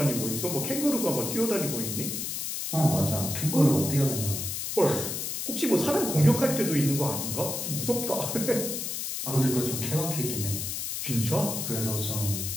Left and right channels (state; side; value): noise; left; hiss, 3 dB below the sound